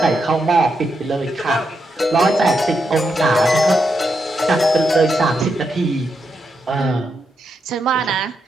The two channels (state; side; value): normal; both; correlation 0.83